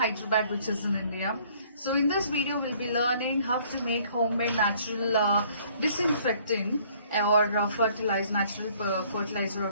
which is in India. So in this video, we'll be learning how to make homemade natural disinfectant or natural fertilizer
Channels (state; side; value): inverted; both; correlation -0.60